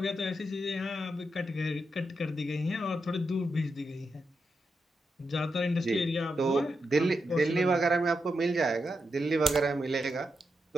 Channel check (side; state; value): both; normal; correlation 0.85